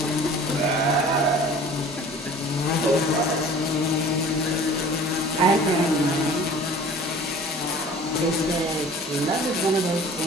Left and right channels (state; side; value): normal; both; correlation 0.45